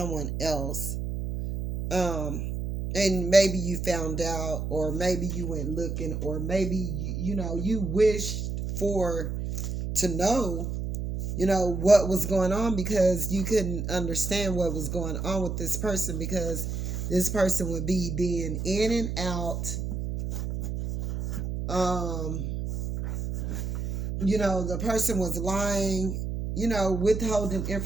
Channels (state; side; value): noise; right; hum, 3 dB below the sound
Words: else. Um, and maybe you found out, or maybe you went looking, or maybe, you wished for to know what was going on because you couldn't understand what was going on with this person because this person would be being in and out. um the person was lying, withholding